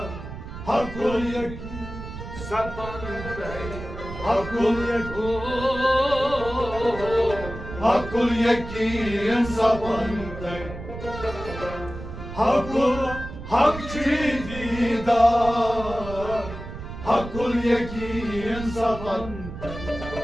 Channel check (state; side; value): noise; right; rumble, 10 dB below the sound